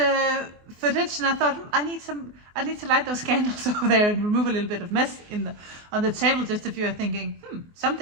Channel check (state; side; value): late; left; 24 ms